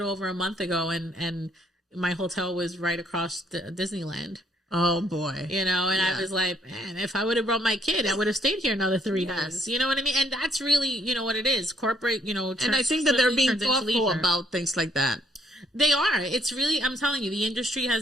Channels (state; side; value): normal; both; correlation 0.67